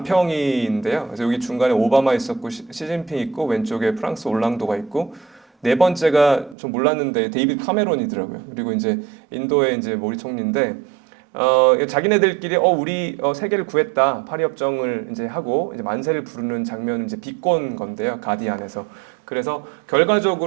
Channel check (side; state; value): left; drops out; at 6.6 s